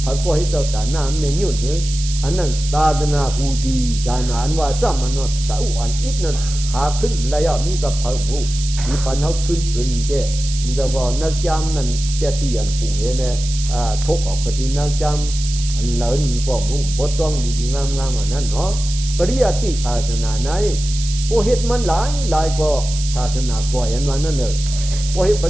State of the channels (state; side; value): noise; right; hiss, 9 dB below the sound